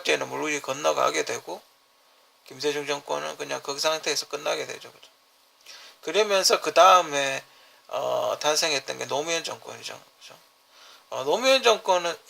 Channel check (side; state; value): both; identical; correlation 1.00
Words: 물리 건너가게 되고 김대중 정권은 그냥 그 상태에서 끝나게 되죠. 그러면서 그 다음에 탄생했던 게 노무현 정권이죠. 그렇죠? 노무현 정권은